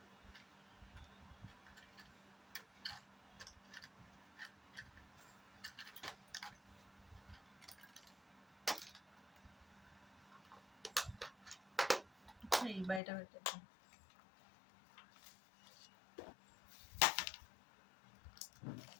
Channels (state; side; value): drops out; right; at 13.0 s